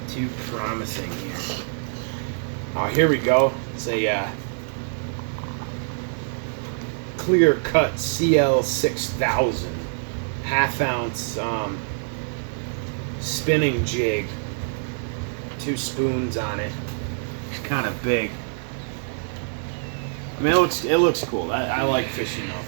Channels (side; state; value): left; silent; digital silence